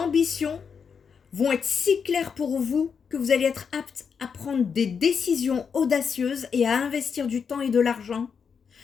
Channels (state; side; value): quieter; right; 6.4 dB